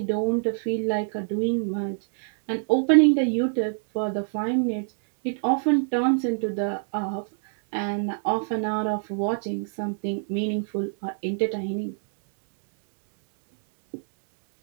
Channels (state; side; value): silent; left; 62 dB below the other